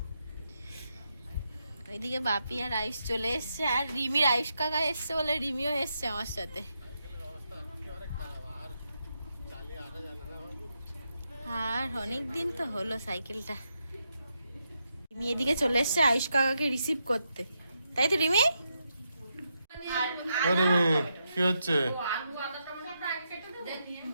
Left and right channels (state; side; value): inverted; both; correlation -0.83